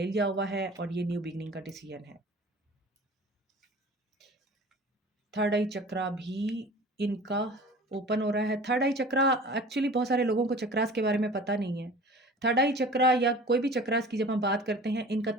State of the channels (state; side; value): normal; both; correlation 0.42